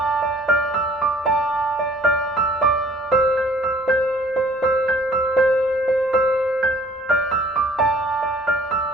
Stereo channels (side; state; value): both; normal; correlation 0.55